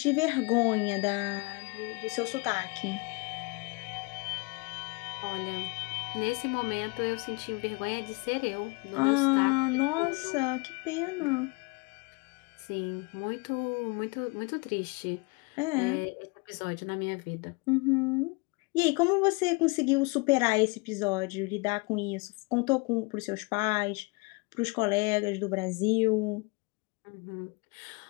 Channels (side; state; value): right; quieter; 29.0 dB